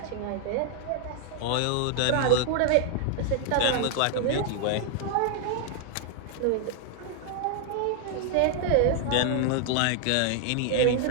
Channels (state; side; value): different; both; correlation 0.00